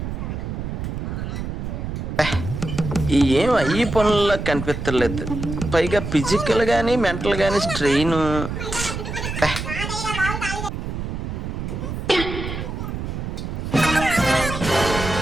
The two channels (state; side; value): noise; right; rumble, 5 dB below the sound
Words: ఏం ఈ పనుల్లో కనిపించలేదు. పైగా ఫిజికల్ గానీ మెంటల్ గానీ స్ట్రెయిన్.